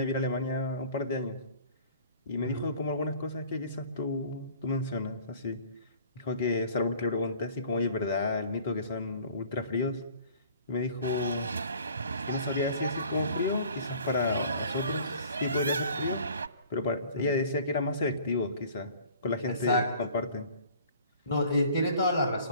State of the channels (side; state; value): both; inverted; correlation -0.50